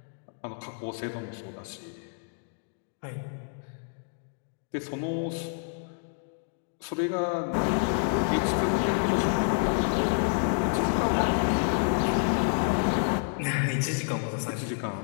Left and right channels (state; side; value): silent; right; digital silence